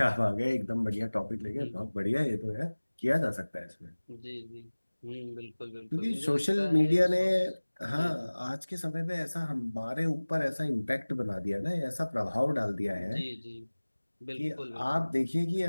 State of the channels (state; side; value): inverted; both; correlation -1.00